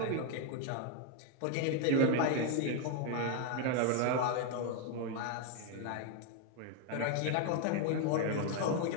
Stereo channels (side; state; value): both; different; correlation 0.01